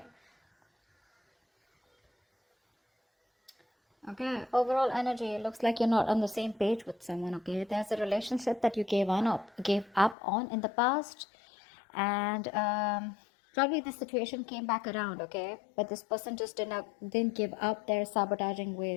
Okay. Overall energy. It looks like you're not on the same page with someone. Okay. There's a relationship that you gave up on in the past, and probably the situation came back around. Okay, but this person just didn't give up their sabotaging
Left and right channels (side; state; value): right; drops out; at 10.2 s